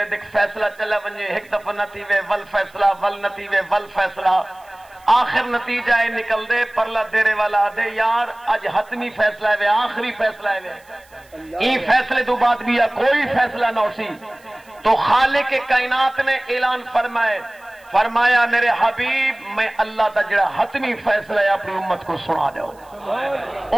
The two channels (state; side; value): noise; right; hiss, 30 dB below the sound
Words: دے فیصلہ چلا ونجے ایک دفعہ نہ تھی وے ول فیصلہ ول نہ تھی وے ول فیصلہ آخر نتیجہ ہے نکل دے پرلا دیرے والا دے یار اج حتمی فیصلہ ہے آخری فیصلہ ہے این فیصلے تو بعد بھی کوئی فیصلہ نہ ہو سی تو خالق کائنات نے اعلان فرمایا میرے حبیب میں اللہ تا جڑا حتمی فیصلہ ہے اپنی امت کو سنا دو